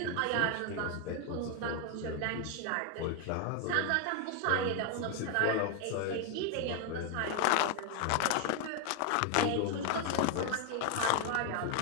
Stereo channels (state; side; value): different; both; correlation 0.01